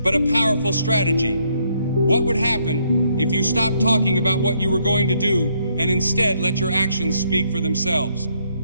but a powerful strategy. What would happen if you stopped talking about what you were going to do and instead let your actions speak for themselves?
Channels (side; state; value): both; inverted; correlation -0.72